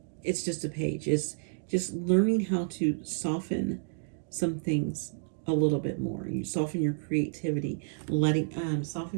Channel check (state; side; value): silent; left; digital silence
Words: it's just a page. It's just learning how to soften some things a little bit more. You soften your creativity,